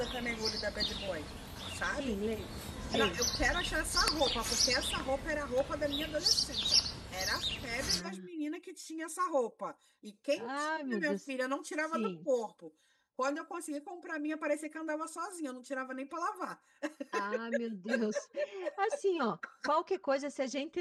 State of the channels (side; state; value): both; identical; correlation 1.00